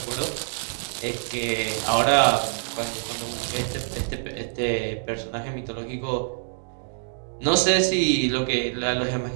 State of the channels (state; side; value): silent; left; digital silence